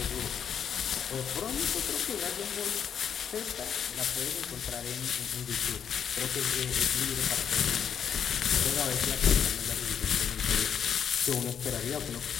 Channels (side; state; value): right; quieter; 7.9 dB